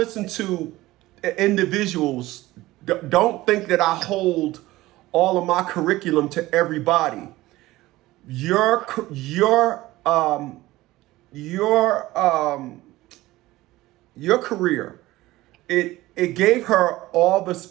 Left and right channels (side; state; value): left; quieter; 17.8 dB